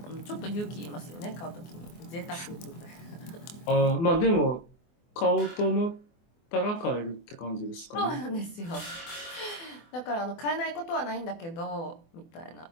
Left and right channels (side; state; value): right; late; 24 ms